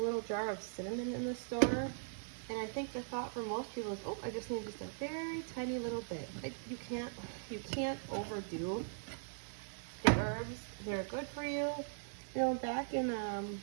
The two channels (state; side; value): silent; left; 51 dB below the other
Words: little jar of cinnamon in the store. And I think the thought for most people is, oh, I just need just a very tiny little bit. You can't overdo the herbs. They're good for you. You know, back in